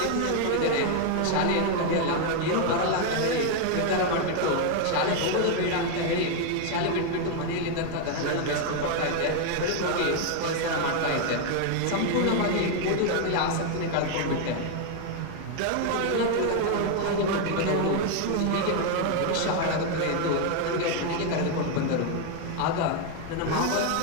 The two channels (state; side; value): different; both; correlation 0.01